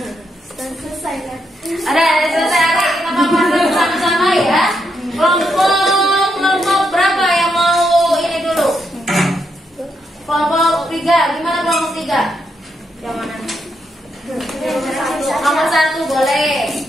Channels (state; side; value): normal; both; correlation 0.80